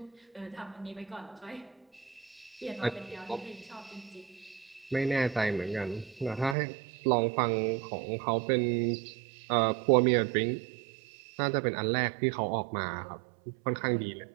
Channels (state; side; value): drops out; left; at 6.6 s